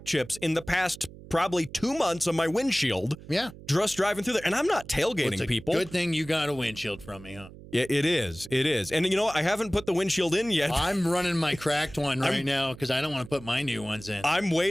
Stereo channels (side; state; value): right; noise; hum, 17 dB below the sound